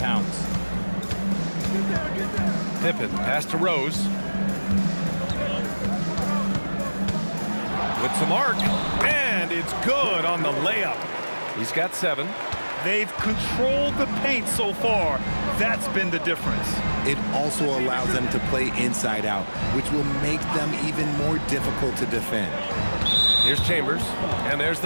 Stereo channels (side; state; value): both; inverted; correlation -1.00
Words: Pippen, pass to Rose. With some arc, and it's good on the layup. He's got 7. They've controlled the paint so far. That's been the difference. It also allows them to play inside out, which will make them even more difficult to defend. Here's Chambers, and there's